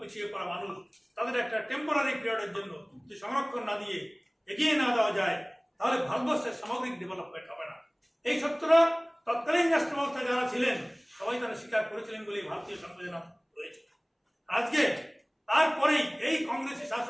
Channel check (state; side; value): identical; both; correlation 1.00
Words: পিছিয়ে পড়া মানুষ তাদের একটা টেম্পোরারি পিরিয়ডের জন্য যদি সংরক্ষণ না দিয়ে এগিয়ে না দেওয়া যায় তাহলে ভারতবর্ষের সামগ্রিক ডেভেলপমেন্ট হবে না। এই সত্যটা তৎকালীন রাষ্ট্র ব্যবস্থায় যারা ছিলেন সবাই তারা স্বীকার করেছিলেন বলে ভারতীয় সংবিধান রয়েছে। আজকে তারপরেই এই কংগ্রেসি